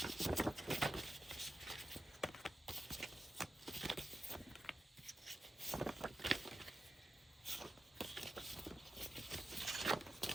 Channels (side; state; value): both; normal; correlation 0.90